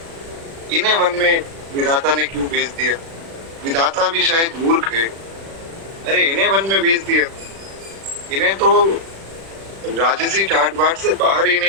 वन में विधाता ने क्यों भेज दिया। विधाता भी शायद मूर्ख है, अरे इन्हें वन में भेज दिया, इन्हें तो राजसी ठाट बाट से बाहर ही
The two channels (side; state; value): left; late; 36 ms